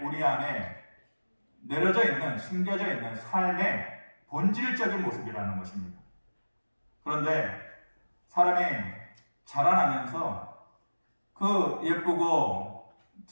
우리 안에 내려져 있는, 심겨져 있는 삶의 본질적인 모습이라는 것입니다. 그런데 사람이 자라나면서 그 예쁘고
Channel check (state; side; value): inverted; both; correlation -1.00